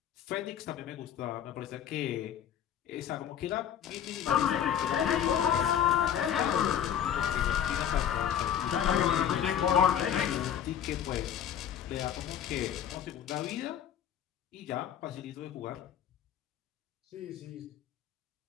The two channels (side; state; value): right; quieter; 9.5 dB